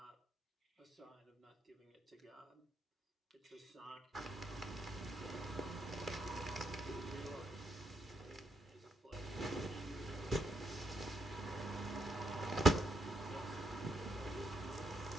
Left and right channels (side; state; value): both; normal; correlation 0.77